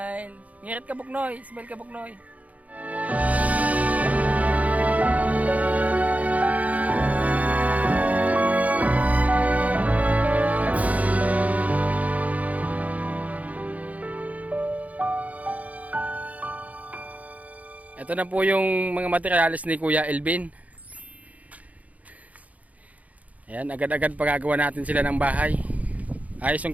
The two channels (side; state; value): left; late; 0.071 ms